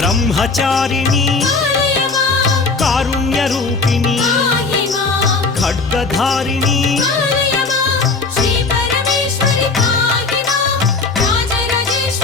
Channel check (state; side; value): quieter; right; 4.1 dB